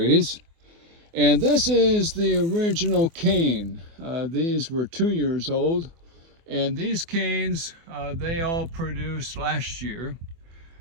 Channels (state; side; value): late; left; 24 ms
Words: And this is the original cane. These were 2 years old, and these canes, they all produced last year.